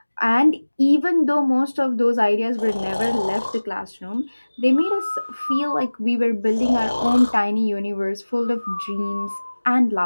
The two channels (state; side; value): inverted; both; correlation -1.00